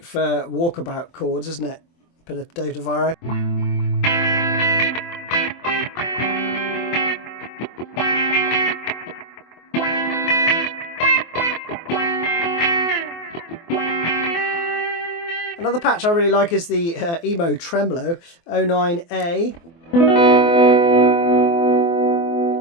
for walkabout chords, isn't it? Bit of Dave DeVries. Another patch I really like is the Emo Tremolo 09A.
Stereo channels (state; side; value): late; right; 24 ms